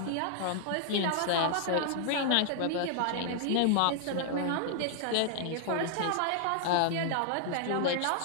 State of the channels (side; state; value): both; different; correlation -0.01